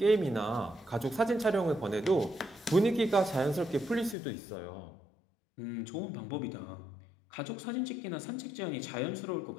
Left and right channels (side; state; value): right; drops out; at 4.2 s